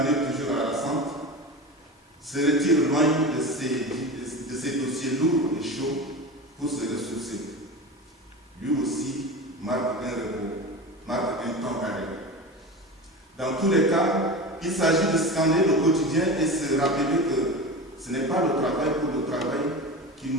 toujours harassante, se retire loin de ces dossiers lourds et chauds pour se ressourcer. Lui aussi marque un repos, marque un temps arrêt. Dans tous les cas, il s'agit de scanner le quotidien et se rappeler que ce n'est pas le travail pour le travail qui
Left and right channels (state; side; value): normal; both; correlation 0.28